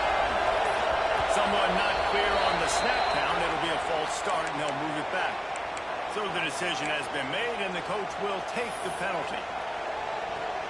Someone not clear on the snap count. It'll be a false start, and they'll move it back. So the decision has been made, and the coach will take the penalty.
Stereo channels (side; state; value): both; identical; correlation 1.00